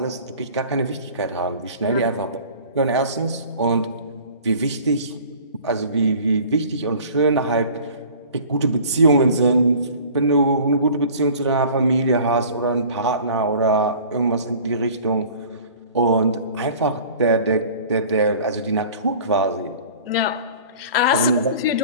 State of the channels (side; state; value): both; inverted; correlation -0.46